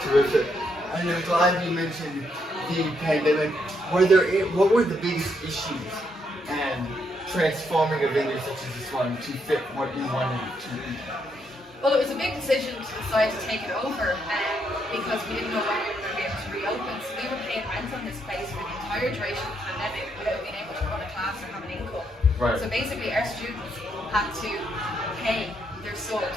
terrific. And I'm glad you mentioned the pandemic. What were the biggest issues and transforming a venue such as this one to fit what you wanted it to be? Well, it was a big decision to decide to take it over because we didn't know when we were going to be able to reopen. So we were paying rent on this place for the entire duration of the pandemic without being able to run a class or have an income. Right. So basically our students had to pay their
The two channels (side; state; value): both; normal; correlation 0.76